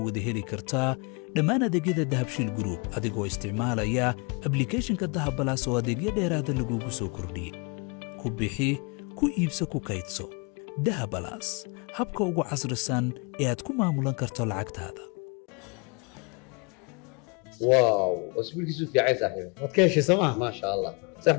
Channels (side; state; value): right; quieter; 32.2 dB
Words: wada heli kartaa dhammaan adeegyada Dahabshiil Group adigoo isticmaalaya applicationka Dahabalaas oo adeegyo dheeraad ah lagugu soo kordhiyay ku bixi ku iibso ku kaydso Dahabalaas habka ugu casrisan ee aad ku maamulan karto lacagtaada واو اسبوع كيسو في عايز صاحبي waad ka heshay sooma ما شاء الله صح